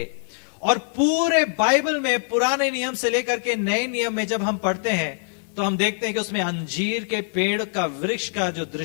और पूरे बाइबल में पुराने नियम से लेकर के नए नियम में जब हम पढ़ते हैं तो हम देखते हैं कि उसमें अंजीर के पेड़ का वृक्ष का जो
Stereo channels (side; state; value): right; silent; 58 dB below the other